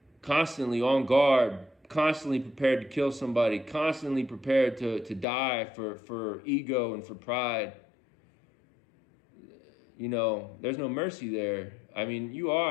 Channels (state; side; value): drops out; right; at 5.2 s